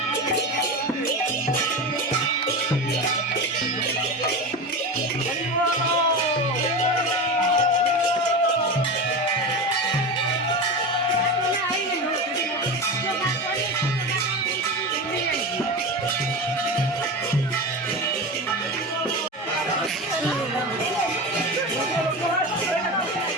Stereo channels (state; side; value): normal; both; correlation 0.24